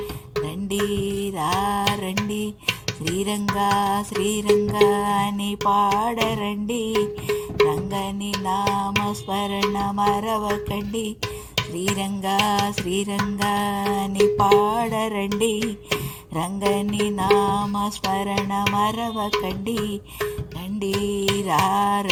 రండి రండి శ్రీరంగా శ్రీరంగా అని పాడరండి, రంగని నామస్మరణ మరవకండి. శ్రీరంగా శ్రీరంగా అని పాడరండి, రంగని నామస్మరణ మరవకండి. రండి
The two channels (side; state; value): both; identical; correlation 1.00